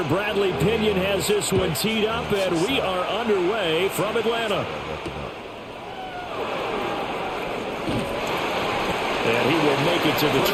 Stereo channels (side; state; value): both; identical; correlation 1.00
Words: Bradley Pinion has this one teed up, and we are underway from Atlanta. And he will make it to the